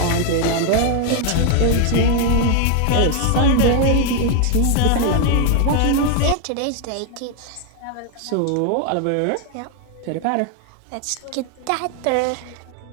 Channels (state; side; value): different; both; correlation 0.01